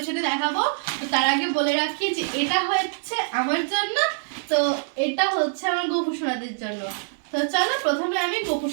সাথে দেখাবো। তো তার আগে বলে রাখি যে এটা হচ্ছে আমার জন্য, তো এটা হচ্ছে আমার গোপুসোনাদের জন্য। তো চলো প্রথমে আমি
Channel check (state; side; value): silent; left; digital silence